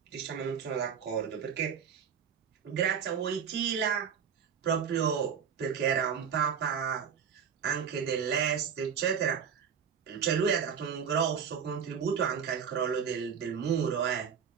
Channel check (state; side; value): quieter; left; 7.3 dB